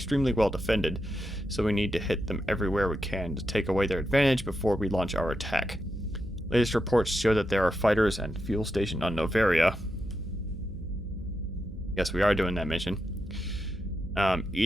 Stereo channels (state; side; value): noise; right; hum, 13 dB below the sound